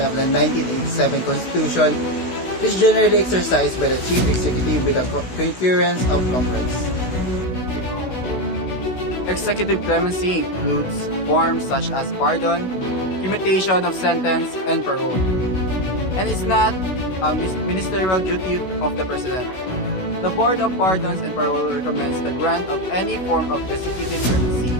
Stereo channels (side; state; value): right; late; 16 ms